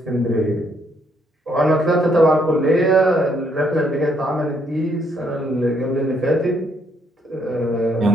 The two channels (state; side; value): normal; both; correlation 0.72